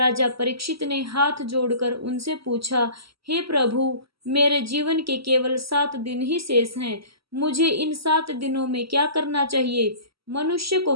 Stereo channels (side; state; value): left; late; 0.75 ms